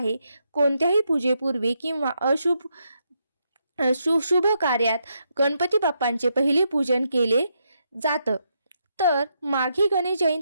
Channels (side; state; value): both; inverted; correlation -0.80